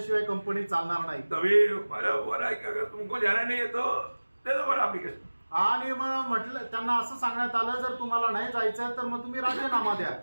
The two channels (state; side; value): inverted; both; correlation -1.00